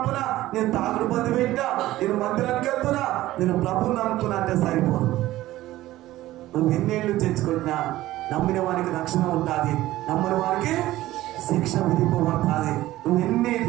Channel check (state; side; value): quieter; left; 15.8 dB